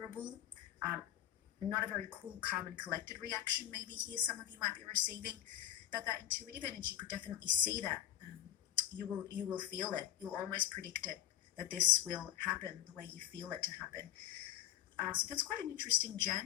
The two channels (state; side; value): quieter; right; 11.6 dB